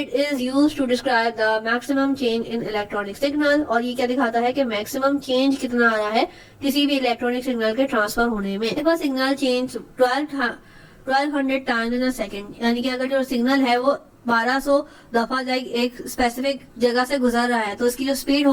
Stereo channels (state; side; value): identical; both; correlation 1.00